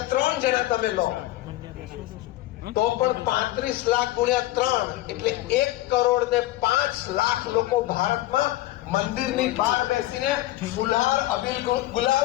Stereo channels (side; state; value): right; quieter; 16.6 dB